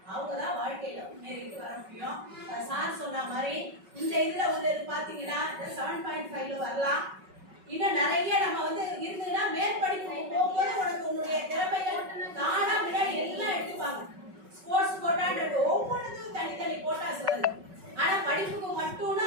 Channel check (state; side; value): late; left; 5.3 ms